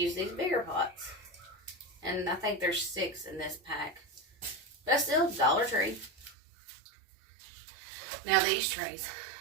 these bigger pots. And I think there's 6 in this pack. But that's still Dollar Tree. Now these trays.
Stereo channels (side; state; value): left; drops out; at 6.4 s